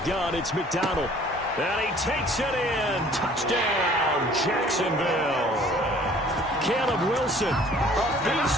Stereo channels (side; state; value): both; normal; correlation 0.53